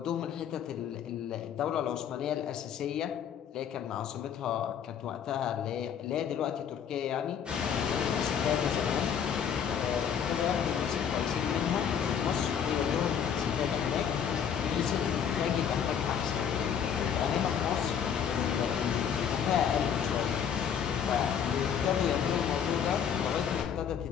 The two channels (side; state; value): right; quieter; 8.0 dB